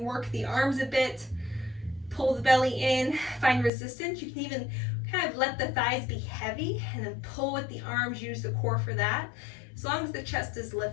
the arms a bit. Pull the belly in, find resistance. You can even kind of let the thighs be heavy and then pull with the arms, use the core for that, as long as the chest is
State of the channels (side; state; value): right; drops out; at 3.7 s